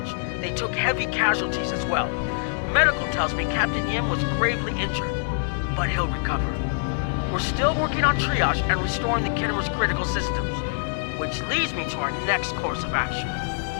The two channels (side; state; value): right; silent; 59 dB below the other